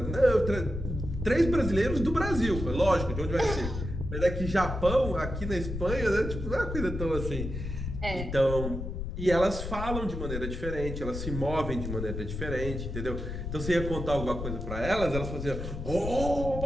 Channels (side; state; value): left; noise; rumble, 5 dB below the sound